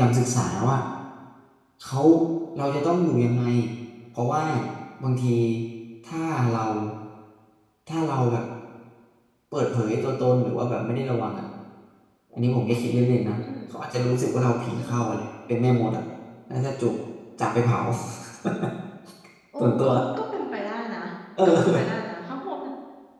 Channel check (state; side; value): identical; both; correlation 1.00